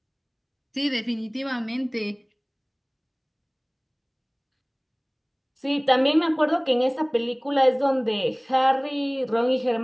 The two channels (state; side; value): identical; both; correlation 1.00